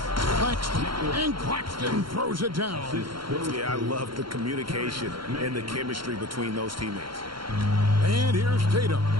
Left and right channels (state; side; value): late; left; 0.73 ms